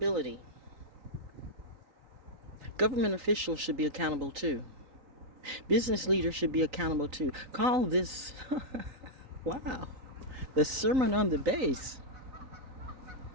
Government officials should be accountable too. Business leaders should be accountable too. Call this, wow, the sermon on the base.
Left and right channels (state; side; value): late; left; 3.8 ms